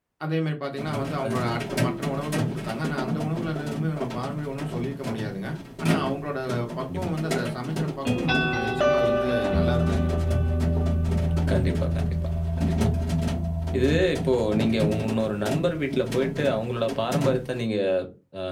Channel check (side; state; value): both; identical; correlation 1.00